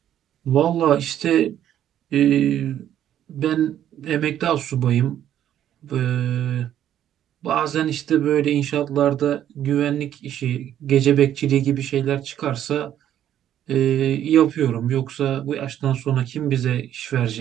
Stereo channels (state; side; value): quieter; left; 11.0 dB